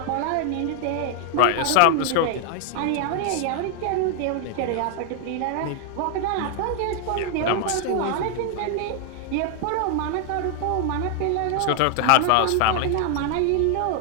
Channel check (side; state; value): both; different; correlation 0.00